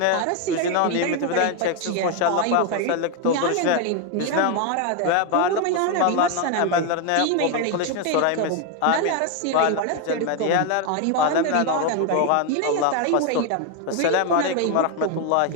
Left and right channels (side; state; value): both; different; correlation 0.01